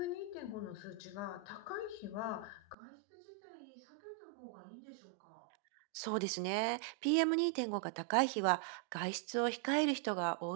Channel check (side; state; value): left; drops out; at 2.8 s